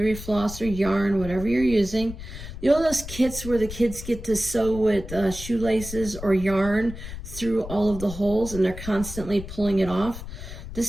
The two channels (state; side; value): noise; left; rumble, 11 dB below the sound